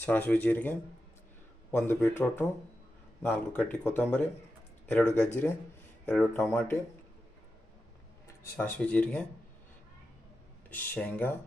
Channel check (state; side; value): normal; both; correlation 0.90